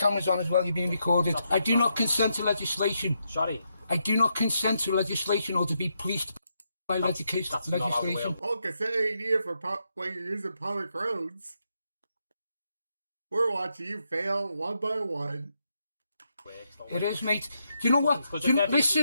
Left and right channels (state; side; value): inverted; both; correlation -0.81